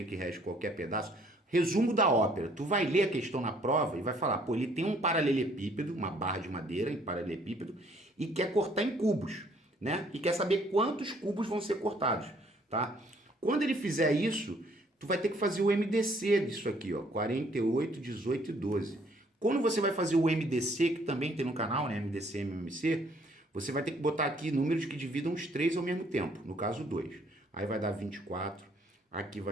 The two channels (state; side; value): normal; both; correlation 0.63